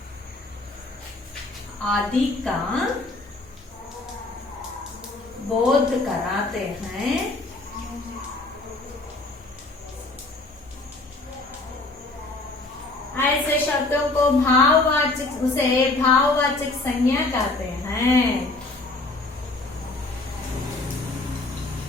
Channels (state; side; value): quieter; right; 3.1 dB